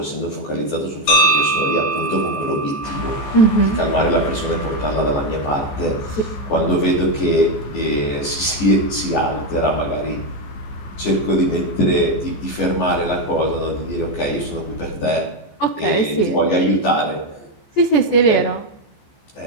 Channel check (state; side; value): late; right; 14 ms